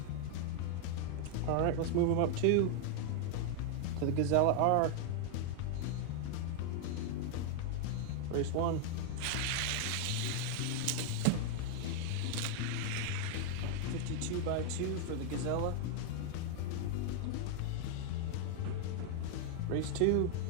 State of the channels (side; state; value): both; different; correlation 0.00